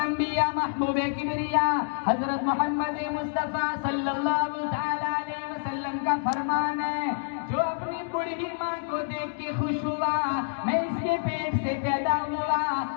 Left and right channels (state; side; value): silent; right; digital silence